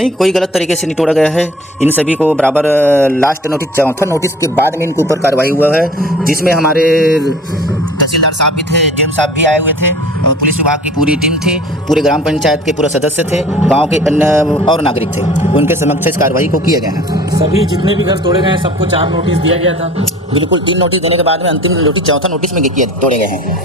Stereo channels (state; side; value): normal; both; correlation 0.46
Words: कोई गलत तरीके से नहीं तोड़ा गया है। इन सभी को बराबर लास्ट नोटिस, चौथा नोटिस के बाद में इनके ऊपर कार्रवाई हुआ है, जिसमें हमारे तहसीलदार साहब भी थे, डीएम साहब भी आए हुए थे, और पुलिस विभाग की पूरी टीम थी, पूरे ग्राम पंचायत के पूरे सदस्य थे, गांव के अन्य और नागरिक थे। उनके समक्ष इस कार्रवाई को किया गया है। सभी जितने भी घर तोड़े गए हैं सबको 4 नोटिस दिया गया था? बिल्कुल, 3 नोटिस देने के बाद में अंतिम नोटिस चौथा नोटिस में तोड़े गए